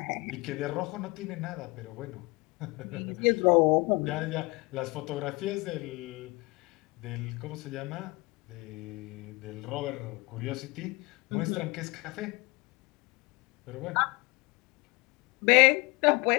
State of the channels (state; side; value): quieter; right; 24.9 dB